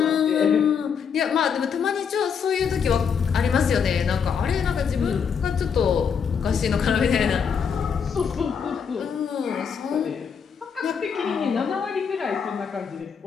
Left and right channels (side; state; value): right; quieter; 6.7 dB